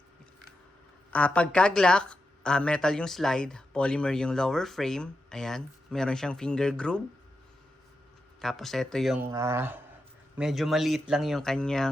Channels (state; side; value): normal; both; correlation 0.88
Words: pagka-Glock, metal yung slide, polymer yung lower frame. Ayan. Meron siyang finger groove. Tapos, ito yung medyo maliit lang yung